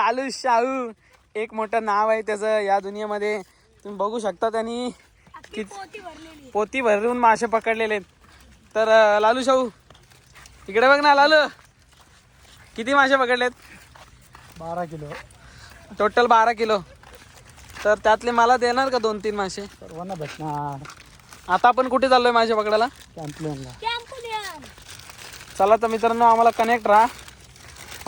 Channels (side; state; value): both; identical; correlation 1.00